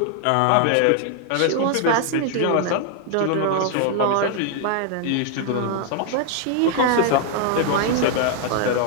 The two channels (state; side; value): different; both; correlation 0.00